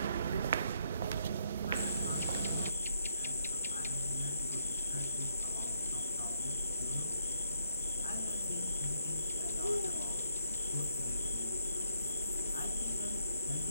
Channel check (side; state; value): both; inverted; correlation -0.71